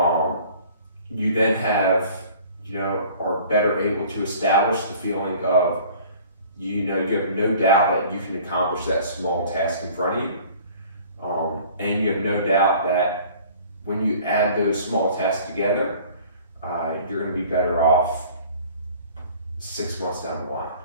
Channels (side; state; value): both; inverted; correlation -0.49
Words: you then are better able to establish the feeling of, you have no doubt that you can accomplish that small task in front of you. And you have no doubt that when you add those small tasks together, you're going to be better off 6 months down the line,